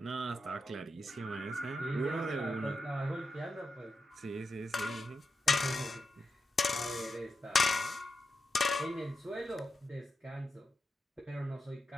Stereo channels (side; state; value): both; normal; correlation 0.87